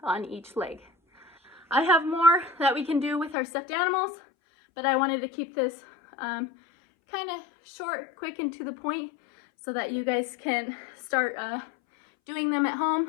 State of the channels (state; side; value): drops out; right; at 3.4 s